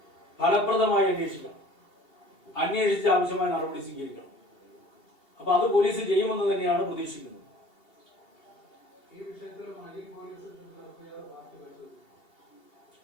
ഫലപ്രദമായി അന്വേഷിക്കണം, അന്വേഷിച്ച് ആവശ്യമായ നടപടി സ്വീകരിക്കണം. അപ്പൊ അത് പോലീസ് ചെയ്യുമെന്ന് തന്നെയാണ് പ്രതീക്ഷിക്കുന്നത്.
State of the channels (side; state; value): right; late; 2.7 ms